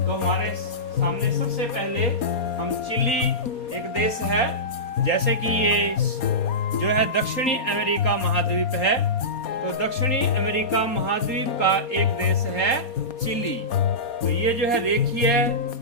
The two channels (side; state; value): right; late; 4.2 ms